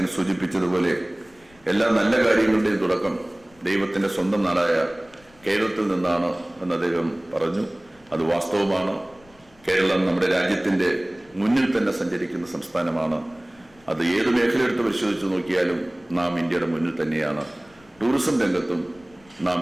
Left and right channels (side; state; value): left; noise; rumble, 29 dB below the sound